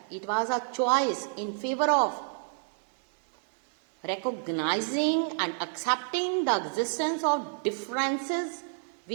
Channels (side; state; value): left; silent; 59 dB below the other